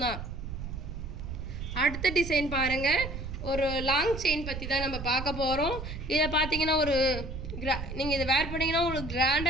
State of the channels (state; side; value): noise; right; rumble, 7 dB below the sound